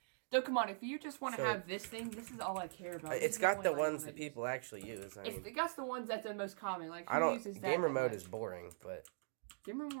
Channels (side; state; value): left; silent; digital silence